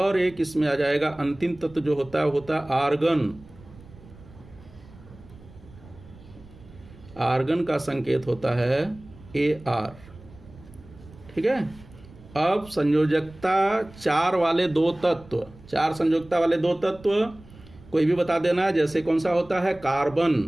एक इसमें आ जाएगा अंतिम तत्व जो होता है, होता है आर्गन। आर्गन का संकेत होता है Ar। ठीक है। अब संयोजकता 4 वाले 2 तत्व, 4 संयोजकता वाले 2 तत्व कोई भी बता देना। जैसे कौन सा होता है? कार्बन।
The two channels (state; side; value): noise; right; rumble, 21 dB below the sound